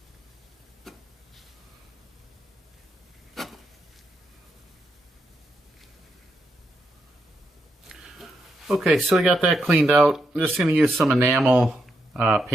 Okay, so we got that cleaned out. I'm just going to use some enamel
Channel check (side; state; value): both; normal; correlation 0.82